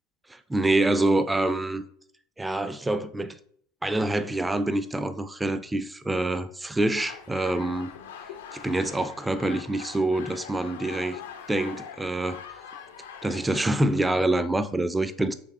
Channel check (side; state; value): both; normal; correlation 0.88